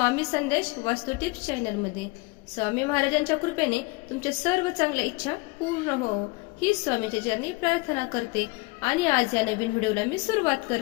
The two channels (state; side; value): quieter; right; 25.4 dB